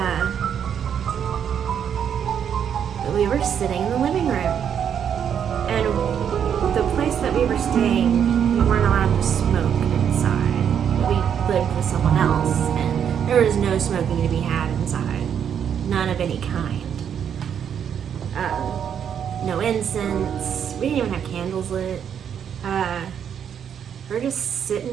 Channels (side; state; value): left; quieter; 8.4 dB